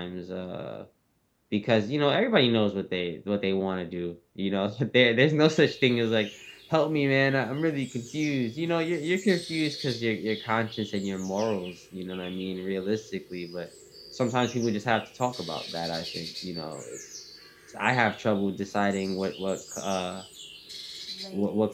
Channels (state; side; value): identical; both; correlation 1.00